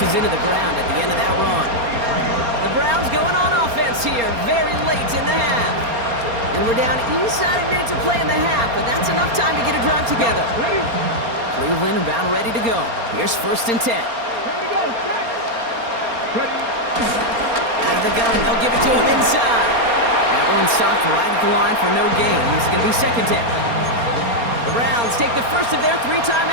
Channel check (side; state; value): left; late; 4.3 ms